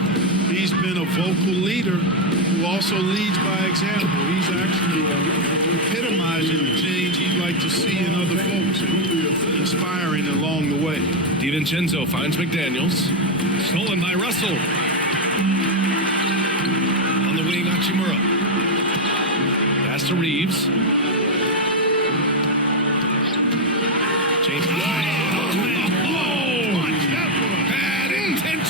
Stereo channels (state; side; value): normal; both; correlation 0.04